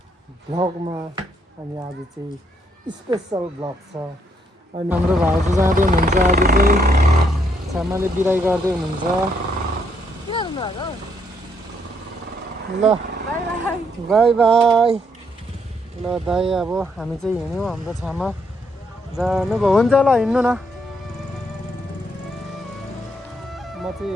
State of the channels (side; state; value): both; normal; correlation 0.73